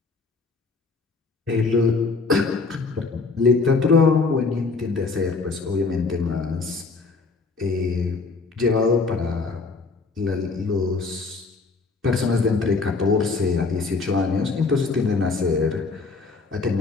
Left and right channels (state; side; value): quieter; right; 4.2 dB